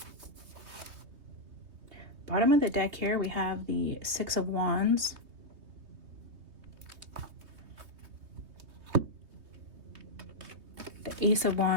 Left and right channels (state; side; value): late; left; 3.5 ms